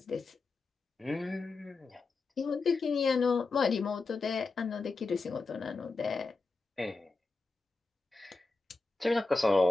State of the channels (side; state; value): right; quieter; 3.7 dB